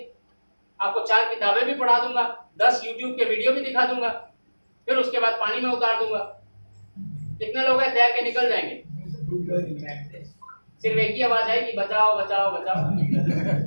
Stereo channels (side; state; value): both; inverted; correlation -1.00